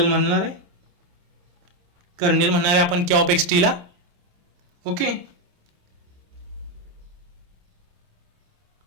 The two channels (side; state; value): left; late; 28 ms